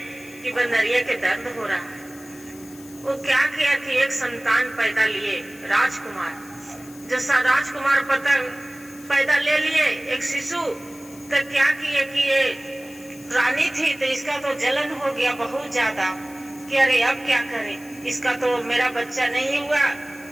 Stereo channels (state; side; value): noise; left; hiss, 21 dB below the sound